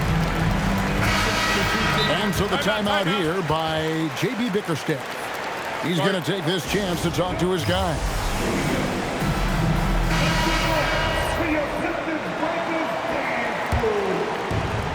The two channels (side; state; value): both; identical; correlation 1.00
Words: And so the timeout here by J.B. Bickerstaff. He's going to take this chance to talk to his guys.